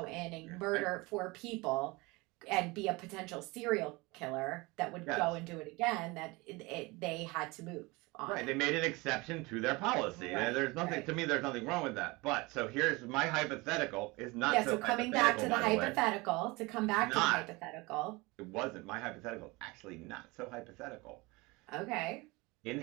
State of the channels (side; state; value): left; quieter; 24.1 dB